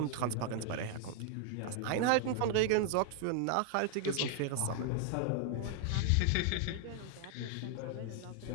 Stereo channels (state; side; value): different; both; correlation 0.00